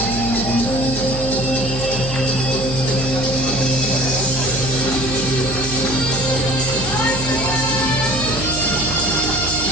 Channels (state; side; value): noise; right; hum, 8 dB below the sound